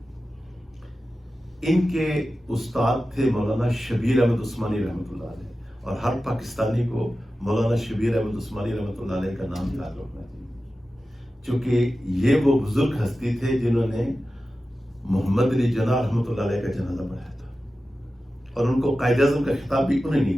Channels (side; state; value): both; normal; correlation 0.93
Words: ان کے استاد تھے مولانا شبیر احمد عثمانی رحمۃ اللہ علیہ، اور ہر پاکستانی کو مولانا شبیر احمد عثمانی رحمۃ اللہ علیہ کا نام یاد رکھنا چاہیے، چونکہ یہ وہ بزرگ ہستی تھے جنہوں نے محمد علی جناح رحمۃ اللہ علیہ کا جنازہ پڑھایا تھا، اور ان کو قائد اعظم کا خطاب بھی انہیں